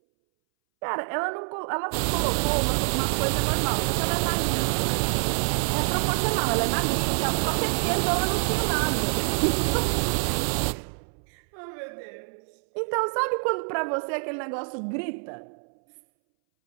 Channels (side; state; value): left; silent; 61 dB below the other